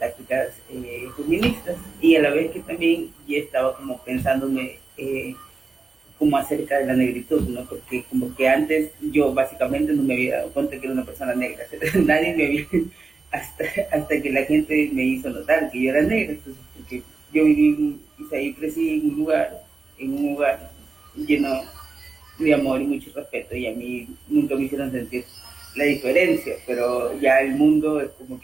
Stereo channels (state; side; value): quieter; left; 4.1 dB